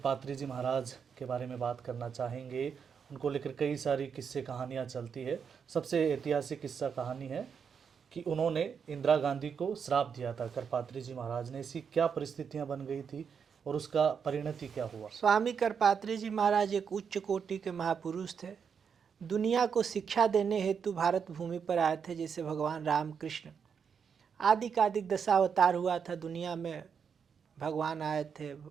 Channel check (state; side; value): quieter; left; 6.7 dB